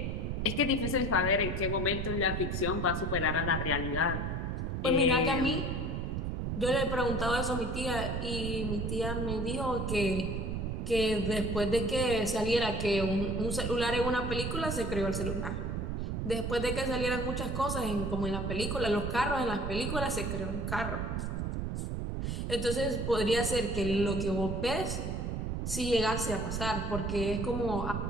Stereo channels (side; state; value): right; noise; rumble, 2 dB below the sound